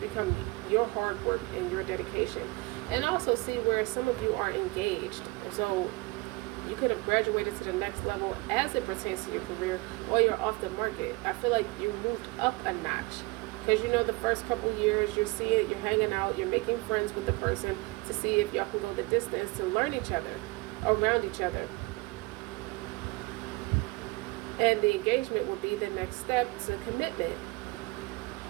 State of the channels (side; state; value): left; quieter; 24.6 dB